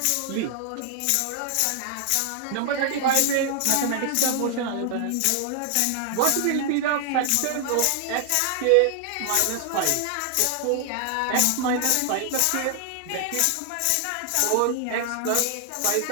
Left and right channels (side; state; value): both; different; correlation 0.00